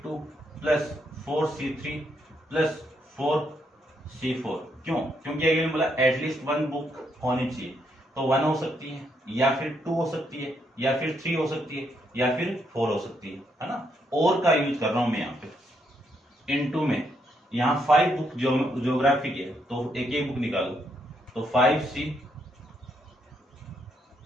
plus 4C3 plus 4C4। क्यों? क्योंकि अगले बोला एटलीस्ट 1 बुक होनी चाहिए, तो 1 हो सकती है या फिर 2 हो सकती है या फिर 3 हो सकती है या फिर 4 हो सकती है ना। और का यूज कर रहा हूं मैं यहाँ पे। इनटू में यहाँ 5 बुक ज्योग्राफी की है, तो एक एक बुक निकालो, तो 5C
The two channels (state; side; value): normal; both; correlation 0.76